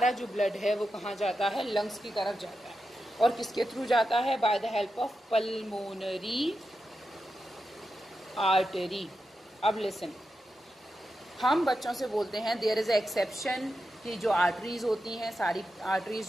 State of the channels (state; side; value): normal; both; correlation 0.89